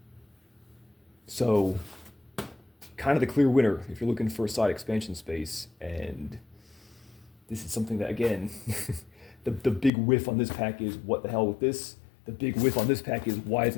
So, kind of the clear winner if you're looking for a side expansion space, and this is something that, again, the big whiff on this pack is what the hell with this. The big whiff on this pack is why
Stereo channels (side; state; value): right; drops out; at 9.9 s